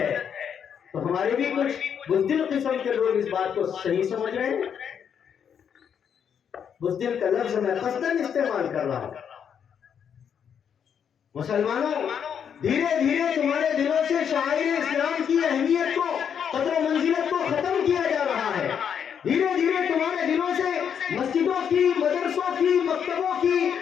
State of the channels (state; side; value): quieter; right; 7.9 dB